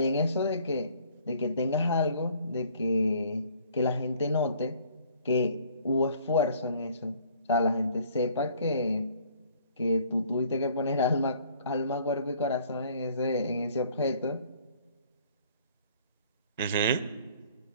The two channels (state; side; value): inverted; both; correlation -0.57